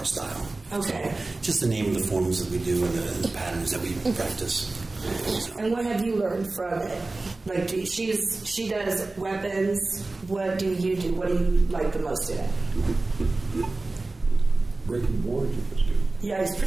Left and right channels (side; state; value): left; quieter; 3.2 dB